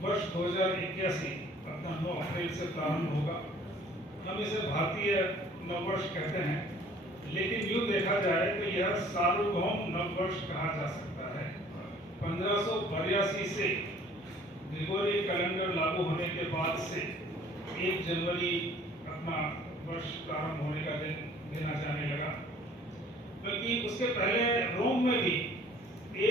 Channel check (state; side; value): normal; both; correlation 0.53